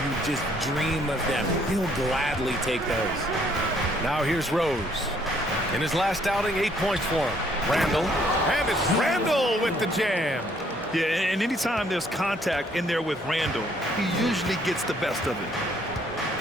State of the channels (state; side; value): normal; both; correlation 0.65